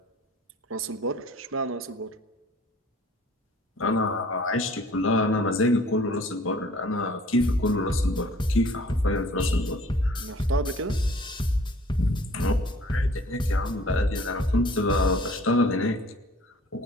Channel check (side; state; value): both; normal; correlation 0.52